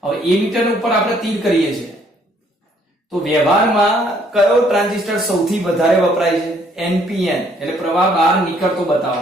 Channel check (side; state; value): both; normal; correlation 0.64